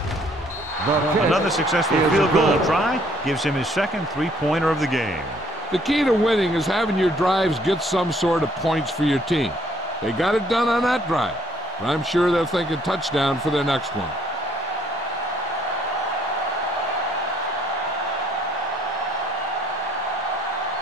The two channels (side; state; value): both; normal; correlation 0.64